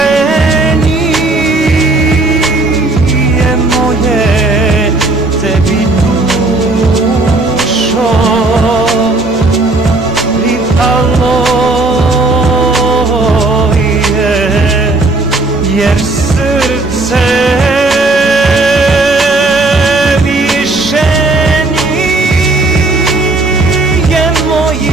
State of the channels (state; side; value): quieter; left; 3.1 dB